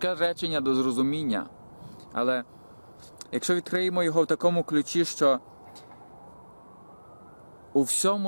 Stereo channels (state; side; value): inverted; both; correlation -1.00